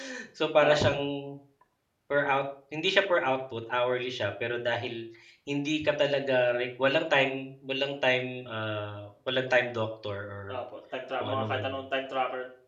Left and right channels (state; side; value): identical; both; correlation 1.00